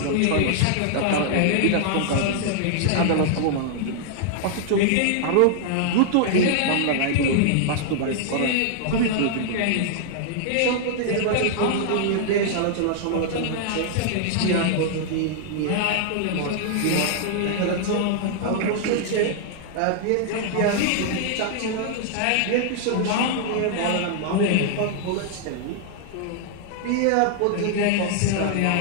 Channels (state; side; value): different; both; correlation -0.01